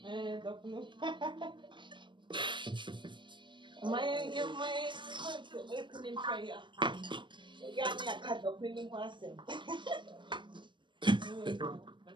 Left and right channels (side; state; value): left; late; 0.23 ms